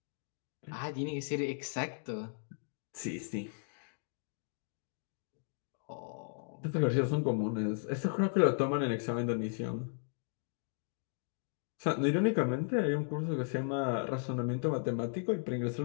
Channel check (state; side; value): silent; right; digital silence